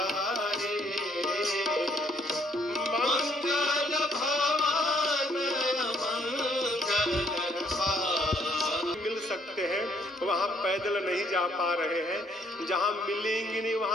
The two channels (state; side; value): normal; both; correlation 0.65